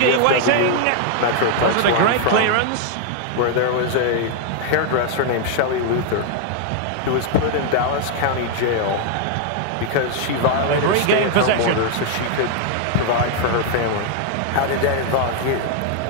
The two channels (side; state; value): both; different; correlation 0.00